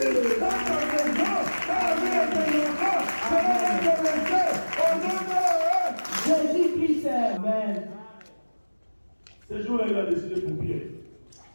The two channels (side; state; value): both; inverted; correlation -1.00